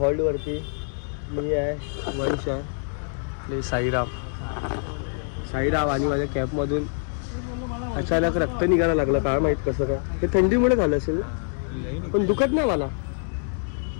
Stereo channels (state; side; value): silent; right; 62 dB below the other